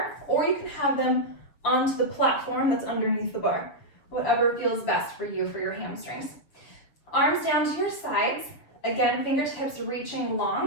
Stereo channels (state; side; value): late; right; 7.1 ms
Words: or you can have them onto the platform that's underneath the bar. Whatever feels best for you for your hamstrings. Arms down to your sides. Again, fingertips reaching